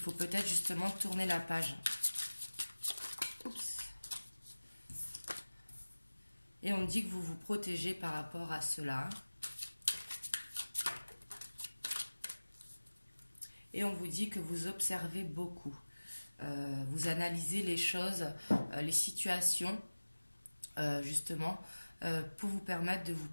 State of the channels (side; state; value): both; inverted; correlation -1.00